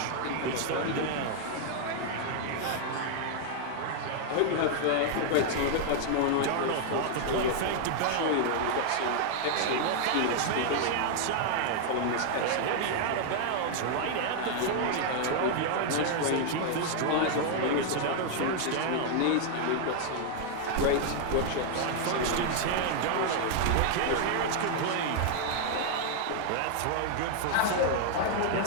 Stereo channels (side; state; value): both; different; correlation -0.01